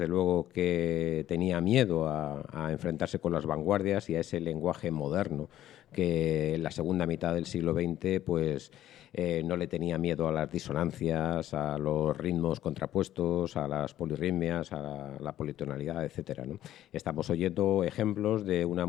luego, que tenía miedo a enfrentarse con las vanguardias y a ese lenguaje moderno que en la segunda mitad del siglo XX pues, no le tenía miedo a las disonancias, a los ritmos contrapuestos, a las polirritmias, a la politonalidad, etcétera, ¿no? Estamos oyendo ejemplos de una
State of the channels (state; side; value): quieter; right; 12.8 dB